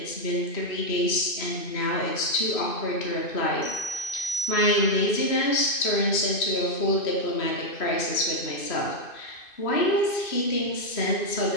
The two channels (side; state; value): right; late; 2.5 ms